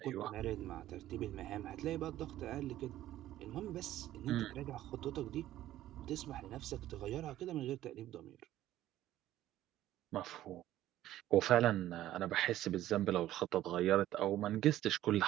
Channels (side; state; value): left; quieter; 13.8 dB